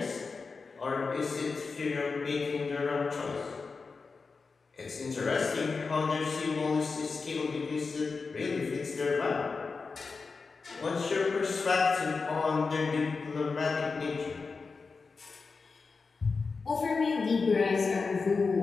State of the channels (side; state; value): right; quieter; 4.5 dB